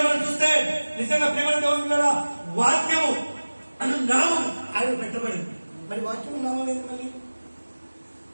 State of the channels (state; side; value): inverted; both; correlation -1.00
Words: మనం చూస్తే నిజంగా ప్రేమ దేవుడు వాక్యము అను నామం ఆయన పెట్టబడింది. మరి వాక్యము నామం ఏంటి? మళ్ళీ